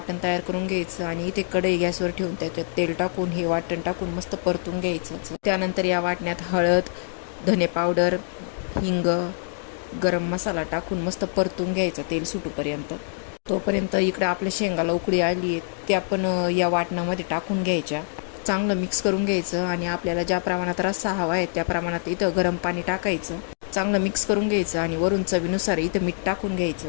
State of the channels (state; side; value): silent; right; digital silence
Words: तयार करून घ्यायचं आणि इथे कढई गॅसवर ठेवून त्याच्यात तेल टाकून हे वाटण टाकून मस्त परतून घ्यायचं. त्यानंतर या वाटण्यात हळद, धने पावडर, हिंग, गरम मसाला टाकून मस्त परतून घ्यायचा तेल सुटूपर्यंत. तोपर्यंत इकडं आपल्या शेंगाला उकळी आली आहे, त्या पण या वाटणामध्ये टाकून घ्यायच्या. चांगलं मिक्स करून घ्यायचं आणि आपल्याला ज्या प्रमाणात रस्सा हवा आहे त्या प्रमाणात इथं गरम पाणी टाकायचं. चांगलं मिक्स करून घ्यायचं आणि वरून चवीनुसार इथं मीठ टाकून घ्यायचं.